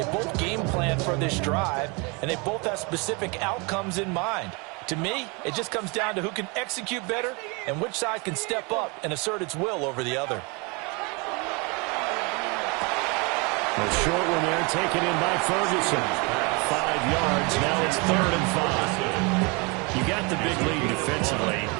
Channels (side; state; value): left; quieter; 29.7 dB